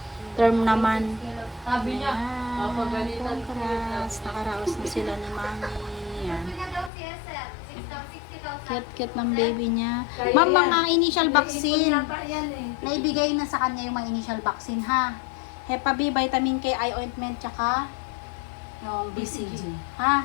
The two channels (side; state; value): right; drops out; at 6.9 s